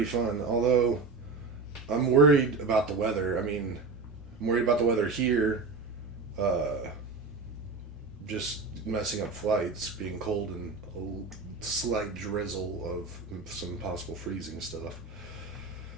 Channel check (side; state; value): left; quieter; 4.2 dB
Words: fun. Although, I'm worried about the weather. I mean, I'm worried about the weather here. Just messing up flights, being cold and a slight drizzle of some possible freezing stuff.